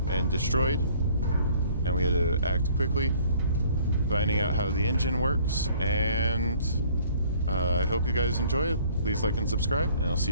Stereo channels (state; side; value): inverted; both; correlation -0.57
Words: and destroyed, and we had to act quickly, finding out how the engine works, and I hope you guys enjoy it. Please like and subscribe, and I'll see